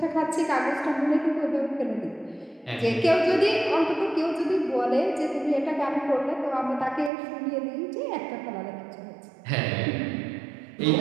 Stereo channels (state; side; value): drops out; left; at 7.1 s